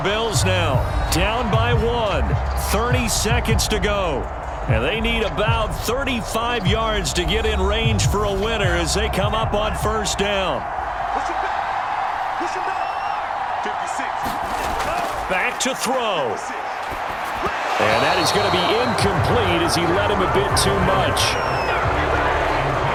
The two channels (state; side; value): identical; both; correlation 1.00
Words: now down by 1. 30 seconds to go. And they need about 35 yards to get in range for a winner as they come up on first down. Back to throw. And that is going to be incomplete as he led him a bit too much.